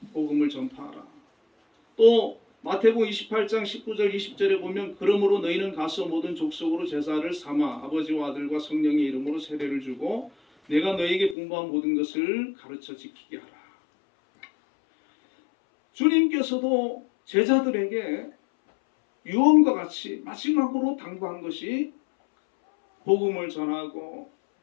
복음을 전파하라. 또 마태복음 28장 19절 20절에 보면 그러므로 너희는 가서 모든 족속으로 제사를 삼아 아버지와 아들과 성령의 이름으로 세례를 주고 내가 너희에게 분부한 모든 것을 가르쳐 지키게 하라. 주님께서도 제자들에게 유언과 같이 마지막으로 당부한 것이 복음을 전하고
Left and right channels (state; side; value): drops out; right; at 11.4 s